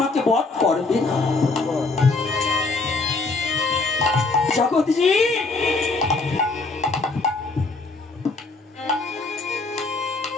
বধ করবে না। জগৎজি,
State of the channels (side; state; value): right; quieter; 3.6 dB